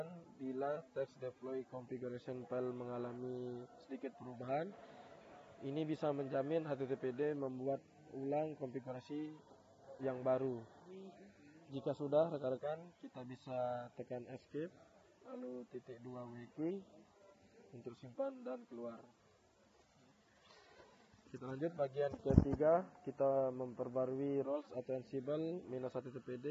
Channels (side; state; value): both; identical; correlation 1.00